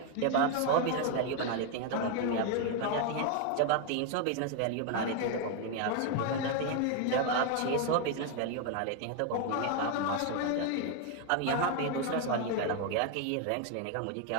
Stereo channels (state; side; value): different; both; correlation 0.01